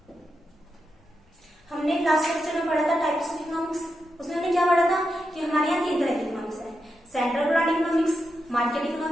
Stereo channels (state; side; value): normal; both; correlation 0.87